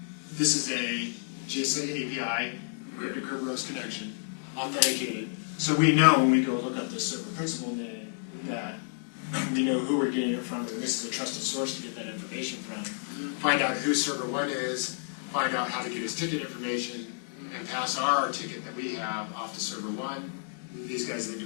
this is a GSA API, encrypted Kerberos connection, authenticated. So we know when we go look up the server principal name that we know who we're getting it from, and this is a trusted source to get that information from. Find out who server 1 is, find out how to get his ticket information, and pass our ticket that we have off to server 1. These guys then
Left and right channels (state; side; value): silent; right; digital silence